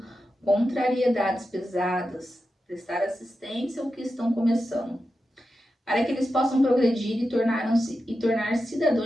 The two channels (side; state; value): both; normal; correlation 0.90